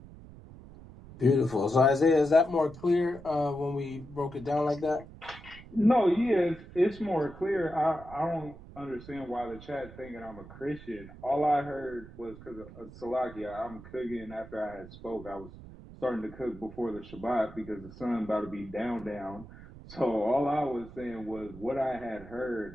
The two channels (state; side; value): noise; right; rumble, 17 dB below the sound